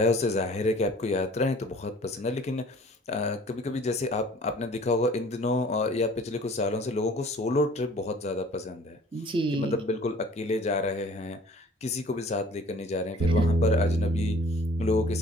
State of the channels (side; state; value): both; normal; correlation 0.51